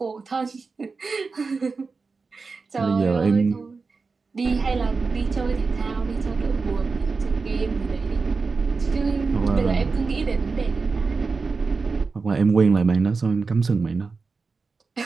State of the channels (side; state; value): left; quieter; 4.4 dB